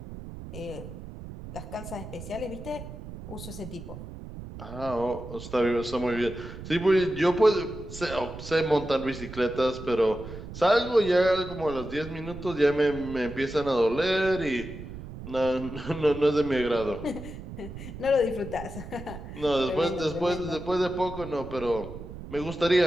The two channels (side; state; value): right; noise; rumble, 12 dB below the sound